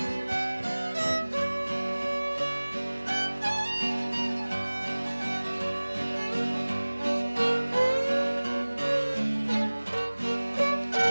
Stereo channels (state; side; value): inverted; both; correlation -1.00